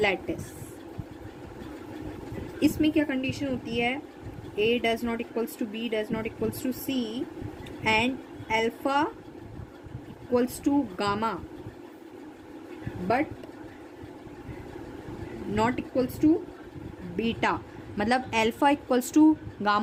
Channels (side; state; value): both; identical; correlation 1.00